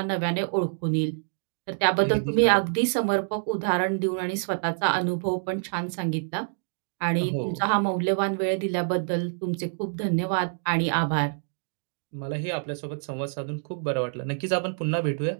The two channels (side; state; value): left; silent; digital silence